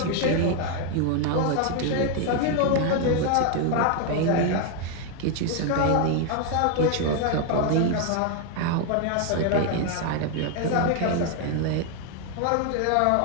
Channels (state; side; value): different; both; correlation 0.01